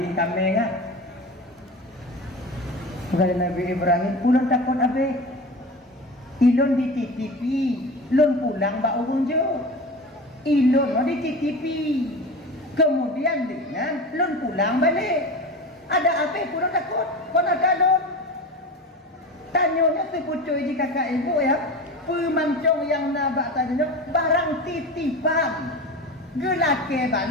kami ngah. Kata Nabi Ibrahim, ulun takut abih. Ilon dititipi, lon pulang bak urun je. Ilon dititipi. Kemudian dengan lon pulang balik. Ada apa pun takut? Kau nak lon? Tanyanya tu pucuk di kakak ibu ya. Pemancong yang nabak tanya barang titipan. Gelake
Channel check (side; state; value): both; normal; correlation 0.30